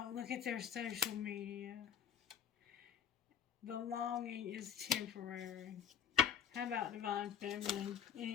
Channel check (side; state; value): right; quieter; 8.6 dB